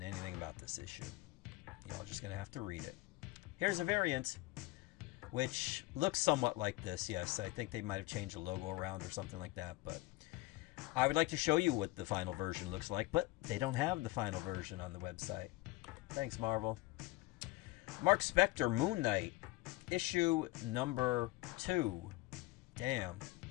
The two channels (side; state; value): right; quieter; 20.0 dB